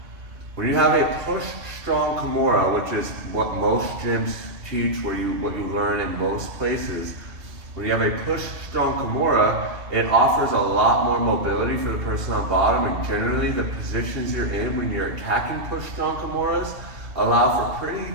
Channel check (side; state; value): left; late; 2.7 ms